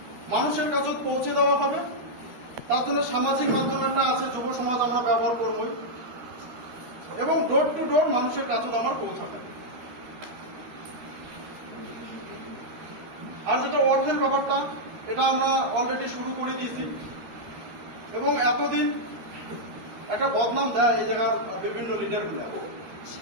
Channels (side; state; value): left; late; 13 ms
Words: মানুষের কাছে পৌঁছে দেওয়া হবে। তার জন্য সামাজিক মাধ্যম একটা আছে, যুব সমাজ আমরা ব্যবহার করব, এবং ডোর টু ডোর মানুষের কাছে আমার পৌঁছাবে। আর যেটা অর্থের ব্যাপারটা, এটা আমরা অলরেডি শুরু করে দিয়েছি। এবং এতদিন একটা বদনাম দেয় এই জায়গার বিভিন্ন লিডারগুলা